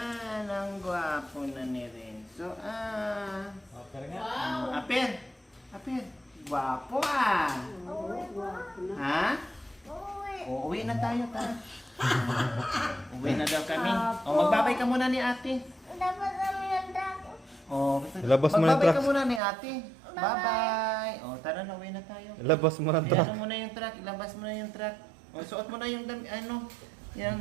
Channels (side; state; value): left; drops out; at 19.4 s